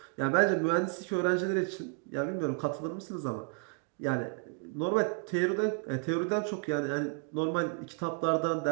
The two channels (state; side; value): quieter; left; 39.4 dB